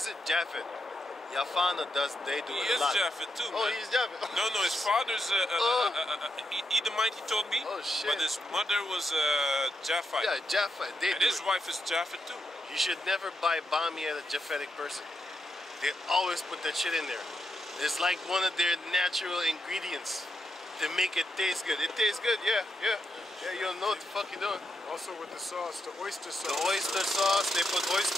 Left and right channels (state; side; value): normal; both; correlation 0.83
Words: it? Japheth. Yafana does. They do He it a is lot. Japheth too, man. Oh, he's Japheth. No, his father's Edomite, he told me. Oh, shit. But his mother was Japhite. Yeah, Japheth. They And do his it. wife is Japheth too. You should never buy bami at a Japhetic person. They always put that shit in there. It's like one of their natural ingredients to make it taste good. It tastes good, yeah. You don't know what the fuck you're doing. Also with the sauce, the oyster sauce. The oyster sauce, they put